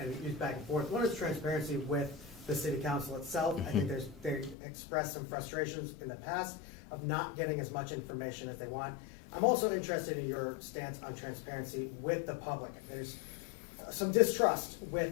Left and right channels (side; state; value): right; drops out; at 4.5 s